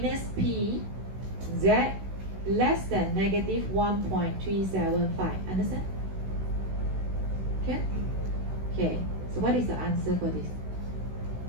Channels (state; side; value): late; left; 16 ms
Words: P Z less than negative 1.375. Understand? Okay? Okay. So what is the answer for this?